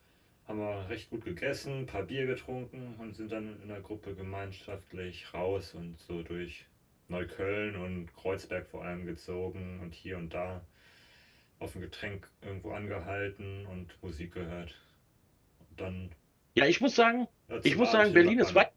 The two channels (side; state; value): both; identical; correlation 1.00